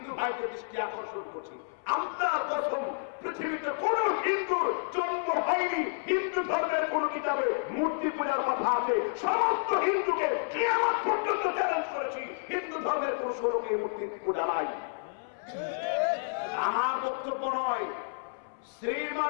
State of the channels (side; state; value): right; silent; 58 dB below the other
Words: ভাইদের দৃষ্টি আকর্ষণ করছি, আল্লাহর কসম পৃথিবীতে কোন হিন্দুর জন্ম হয়নি হিন্দু ধর্মের কোন কিতাবে মূর্তি পূজার কথা আছে। সমস্ত হিন্দুকে কিয়ামত পর্যন্ত চ্যালেঞ্জ করেছি, হিন্দু ধর্মের কোন স্বরূপে মূর্তি পূজা নাই। আমার বক্তব্য নয়,